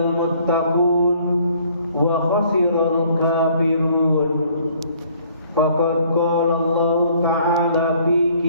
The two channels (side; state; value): both; inverted; correlation -0.60